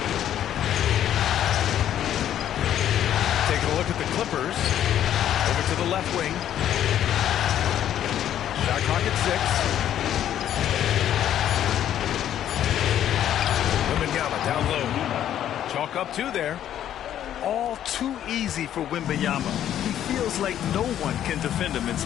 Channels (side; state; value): right; quieter; 10.9 dB